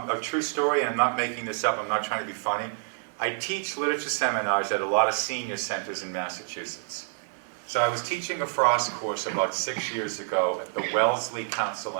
true story, and I'm not making this up, I'm not trying to be funny. I teach literature seminars at a lot of senior centers in Massachusetts. So I was teaching a Frost course about 6 years ago at the Wellesley Council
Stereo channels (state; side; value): silent; left; digital silence